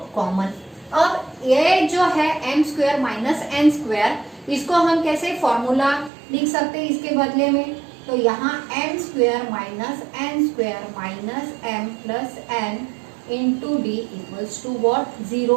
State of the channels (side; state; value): left; drops out; at 6.1 s